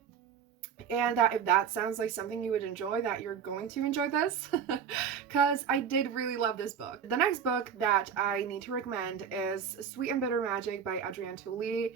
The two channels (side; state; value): left; quieter; 7.6 dB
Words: and that if that sounds like something you would enjoy, that you're going to enjoy this, because I did really love this book. The next book that I need to recommend is Sweet and Bitter Magic by Adrienne Tooley.